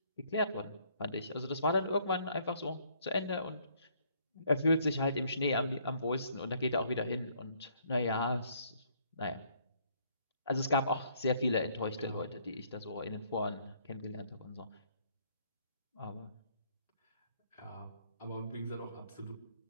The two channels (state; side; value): inverted; both; correlation -0.65